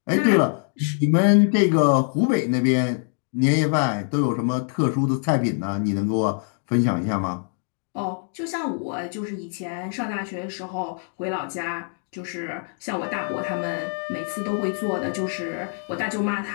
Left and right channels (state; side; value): silent; right; 57 dB below the other